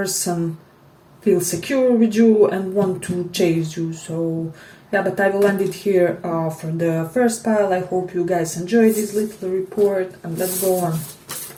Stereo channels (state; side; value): identical; both; correlation 1.00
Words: feel secure with you and want to chase you. So yeah, but I will end it here for the first pile. I hope you guys enjoyed this little report, and let's go on.